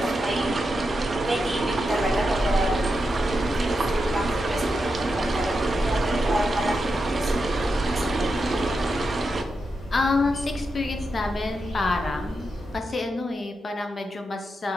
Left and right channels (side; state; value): both; normal; correlation 0.87